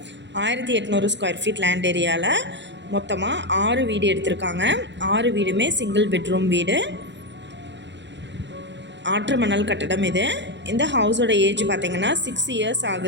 1800 ஸ்கொயர் ஃபீட் லேண்ட் ஏரியாவில் மொத்தமாக 6 வீடு எடுத்திருக்காங்க. 6 வீடுமே சிங்கிள் பெட்ரூம் வீடு, ஆற்று மணல் கட்டடம். இந்த ஹவுஸோட ஏஜ் பார்த்திங்கன்னா 6 இயர்ஸ்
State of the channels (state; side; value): late; left; 0.52 ms